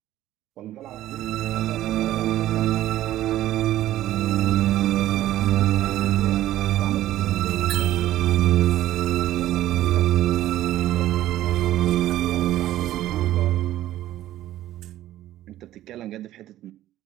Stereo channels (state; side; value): quieter; left; 13.8 dB